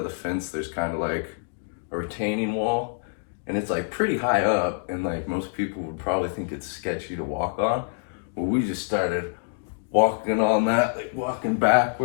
the fence there's kind of like a retaining wall, and it's like pretty high up, and like most people would probably think it's sketchy to walk on. Well, we just started walking on that, like walking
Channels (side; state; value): right; silent; digital silence